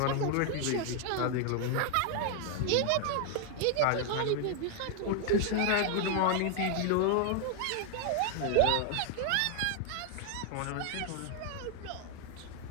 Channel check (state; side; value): different; both; correlation 0.01